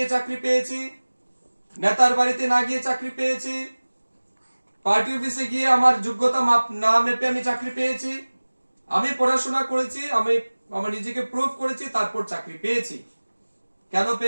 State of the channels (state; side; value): inverted; both; correlation -1.00